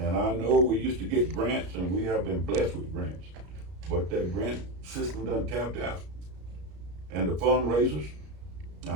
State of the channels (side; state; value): left; late; 33 ms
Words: I know we used to get grants, and we have been blessed with grants, but that grant system done tapped out. And the fundraisers,